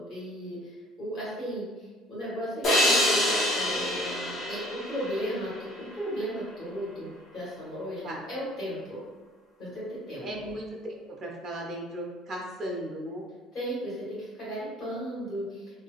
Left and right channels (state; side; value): normal; both; correlation 0.54